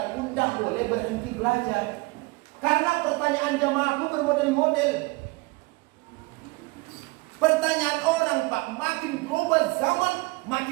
pun tak boleh berhenti belajar. Karena pertanyaan jamaahku bermodel-model. Pertanyaan orang, Pak, makin berubah zaman,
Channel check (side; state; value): left; quieter; 25.0 dB